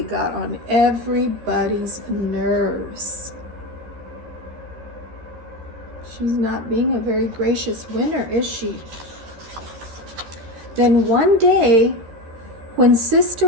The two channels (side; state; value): left; late; 13 ms